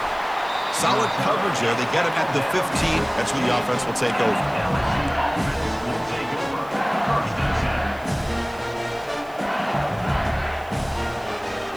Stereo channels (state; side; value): noise; right; hiss, 25 dB below the sound